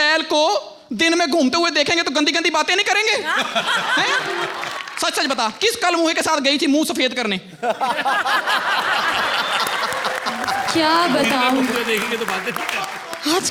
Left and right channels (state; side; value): identical; both; correlation 1.00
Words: को दिन में घूमते हुए देखेंगे तो गंदी गंदी बातें नहीं करेंगे? हैं? सच सच बता, किस कल मुँह के साथ गई थी मुंह सफेद करने? क्या बताऊँ, मुझे देखेंगे तो बातें नहीं करेंगे।